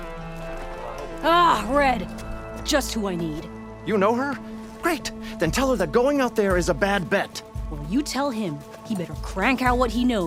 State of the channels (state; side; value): identical; both; correlation 1.00